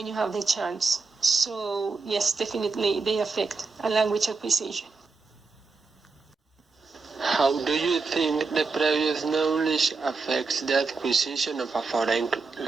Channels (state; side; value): quieter; left; 4.3 dB